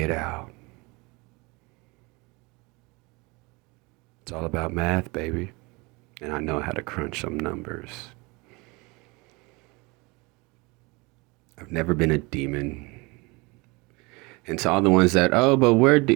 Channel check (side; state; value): left; quieter; 26.2 dB